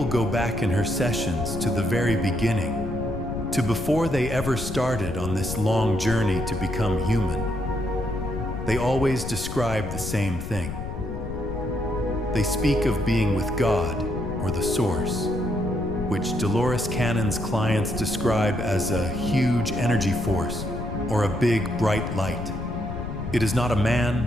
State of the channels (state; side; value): noise; left; rumble, 7 dB below the sound